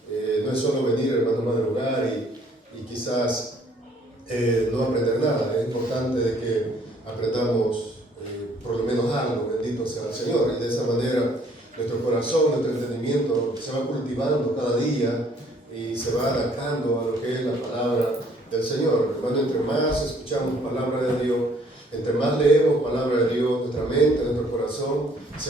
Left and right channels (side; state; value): both; normal; correlation 0.61